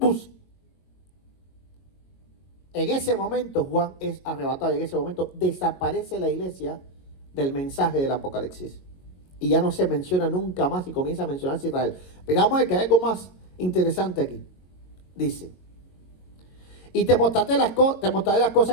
En ese momento Juan es arrebatado y en ese momento desaparece la iglesia del mensaje del Apocalipsis. Y ya no se menciona nunca más y comienza a mencionarse Israel. Pero vamos a ver que hay algo más interesante aquí. Dice, y te mostraré las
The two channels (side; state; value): right; late; 22 ms